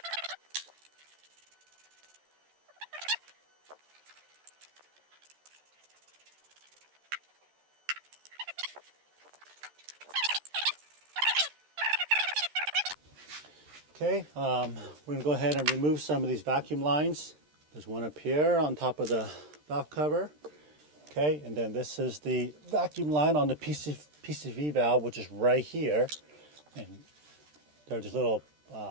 Okay, we're going to go ahead and remove some of these vacuum lines. There's one up here on top of the valve cover. Okay, and then this is the vacuum line on the PCV valve, which is right here. And there are just little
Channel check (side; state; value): left; late; 13 ms